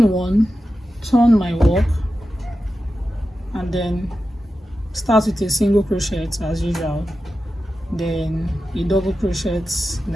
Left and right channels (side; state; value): both; normal; correlation 0.92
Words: 1, turn my work, and then start with a single crochet as usual, then a double crochet